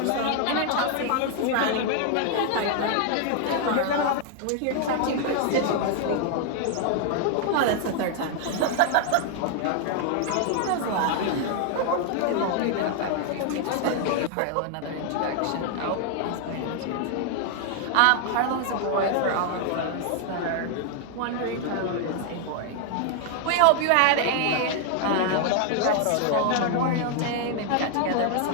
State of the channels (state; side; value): different; both; correlation 0.00